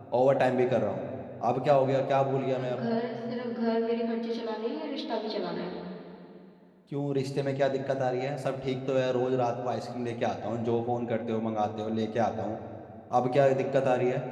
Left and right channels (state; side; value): identical; both; correlation 1.00